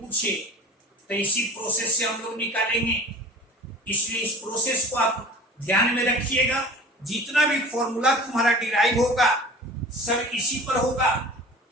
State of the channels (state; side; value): normal; both; correlation 0.41